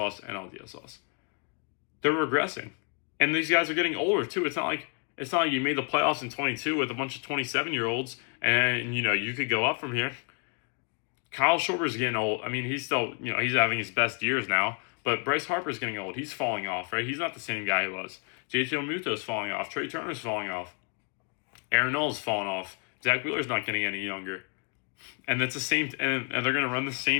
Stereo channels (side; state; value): right; quieter; 35.9 dB